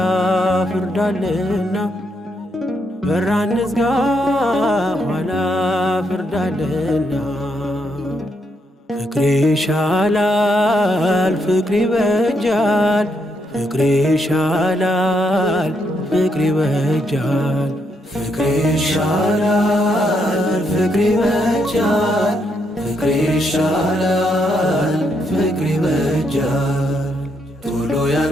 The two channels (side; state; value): both; normal; correlation 0.77